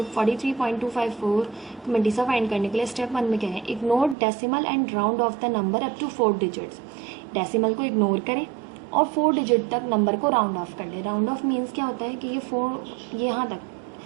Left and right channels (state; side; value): drops out; left; at 4.2 s